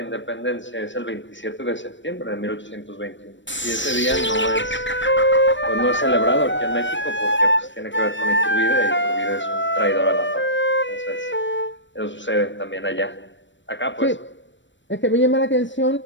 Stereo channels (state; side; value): late; right; 0.54 ms